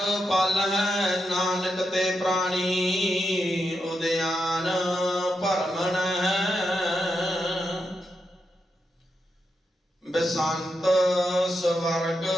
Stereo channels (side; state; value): both; normal; correlation 0.85